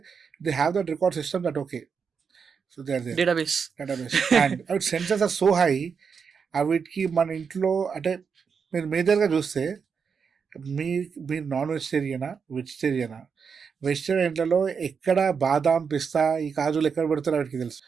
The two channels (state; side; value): quieter; left; 6.1 dB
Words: they have that record system that okay. So they are their database. And అవి sensors are so high. వీటికి మన ఇంట్లో అంటే మీరు మేజర్గా చూస్తే మీరు నాన్ వెజిటేరియనా, వెజిటేరియనా? వెజిటేరియన్లలో ఎక్కడ బాదాం, పిస్తా, ఈ కాజులు ఎక్కడ పెడతారో వాటికి తెలుసు.